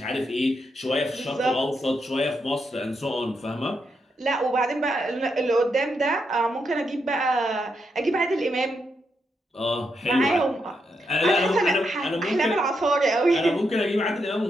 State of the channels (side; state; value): both; normal; correlation 0.81